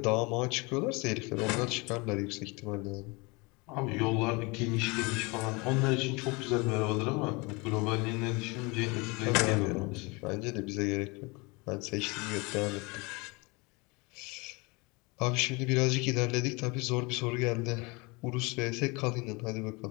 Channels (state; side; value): quieter; right; 27.1 dB